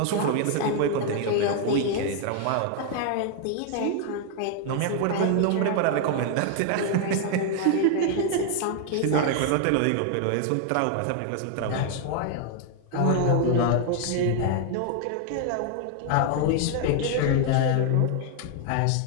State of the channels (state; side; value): different; both; correlation 0.00